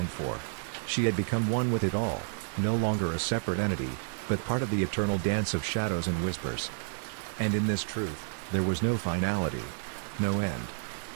for. She had become one with it all, no longer a separate entity, but part of the eternal dance of shadows and whispers. And in this truth, there was no finality, no end.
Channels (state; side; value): silent; left; digital silence